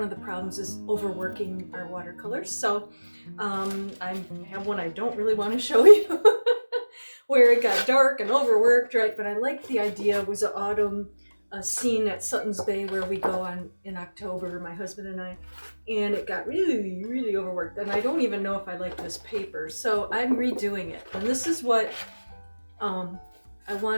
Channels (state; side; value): inverted; both; correlation -1.00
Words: of the problems is overworking our watercolors. So I have one I don't really want to show you. Where it got dark and overworked, right? But I liked the idea. It was an autumn scene at Sutton's Bay where we go on in October, my husband and I, and it got really, really overworked. And I don't even know if I like this paper, so I'm redoing it. And this is what I